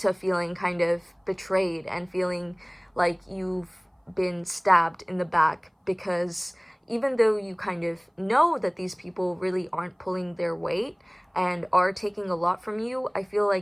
feeling kind of betrayed and feeling like you've been stabbed in the back, because even though you kind of know that these people really aren't pulling their weight and are taking a lot from you, I feel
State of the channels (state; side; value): identical; both; correlation 1.00